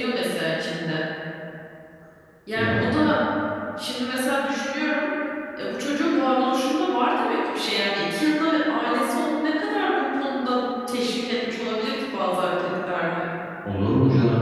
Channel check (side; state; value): both; identical; correlation 1.00